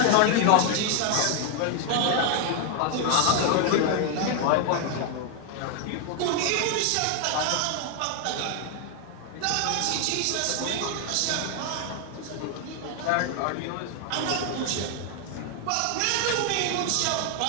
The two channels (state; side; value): different; both; correlation 0.00